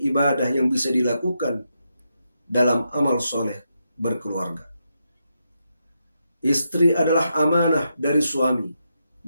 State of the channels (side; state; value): both; inverted; correlation -0.83